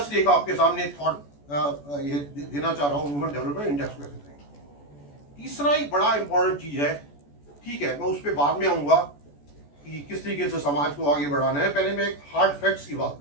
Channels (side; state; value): right; late; 14 ms